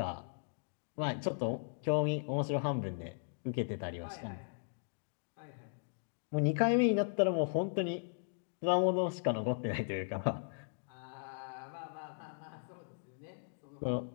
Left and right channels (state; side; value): silent; right; digital silence